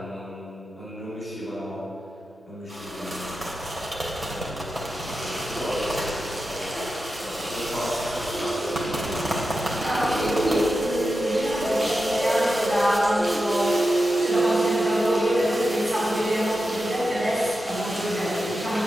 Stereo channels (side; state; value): both; normal; correlation 0.90